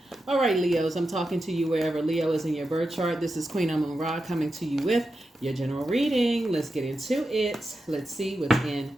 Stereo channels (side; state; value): both; normal; correlation 0.89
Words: All right, Leos, I'm talking to you wherever Leo is in your birth chart. This is Queen Amun Ra coming to you with your general reading. Let's get into it. Let's see what's in